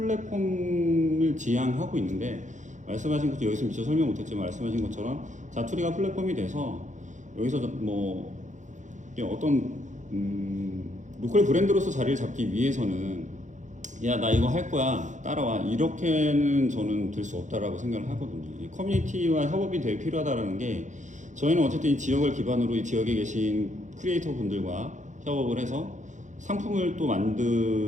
지향하고 있는데 말씀하신 것도 여기서 미처 설명 못했지만 말씀하신 것처럼 자투리가 플랫폼이 돼서 여기서 뭐 어떤 로컬 브랜드로서 자리를 잡기 위해서는 야 나 이거 할 거야 따라와 이렇게는 저는 될 수 없다라고 생각을 하거든요. 이 커뮤니티와 협업이 되게 필요하다라는 게 저희는 어쨌든 이 지역을 기반으로 이 지역에 계신 크리에이터 분들과 협업을 해서 상품을 또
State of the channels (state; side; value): late; left; 0.35 ms